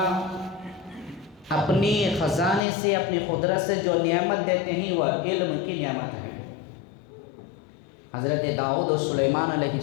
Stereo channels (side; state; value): right; drops out; at 2.7 s